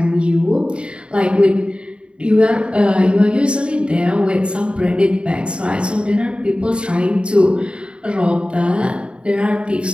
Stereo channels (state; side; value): late; left; 0.055 ms